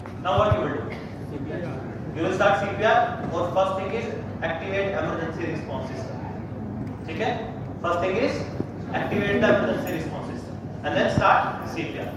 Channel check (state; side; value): identical; both; correlation 1.00